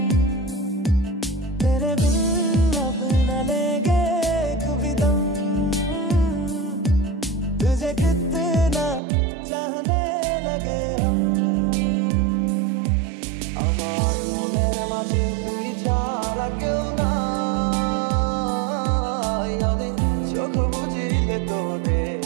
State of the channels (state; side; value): drops out; left; at 9.0 s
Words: तेरे बिन अब न लेंगे कभी दम तुझे कितना चाहने लगे हम আমার মনের মাঝে তুই ছাড়া কেউ নাই আমি চোখ বুঝিলে তোরে